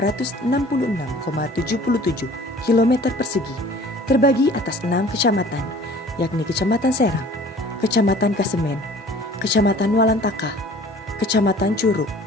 km persegi terbagi atas 6 kecamatan, yakni Kecamatan Serang, Kecamatan Kasemen, Kecamatan Walantaka, Kecamatan Curug,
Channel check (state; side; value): normal; both; correlation 0.49